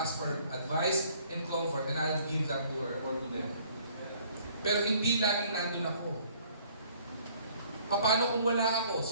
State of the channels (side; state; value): both; inverted; correlation -0.59